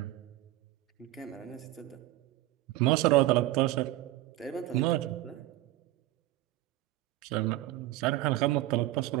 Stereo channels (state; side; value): quieter; left; 16.5 dB